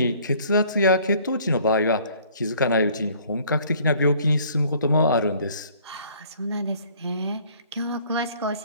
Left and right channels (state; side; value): inverted; both; correlation -0.56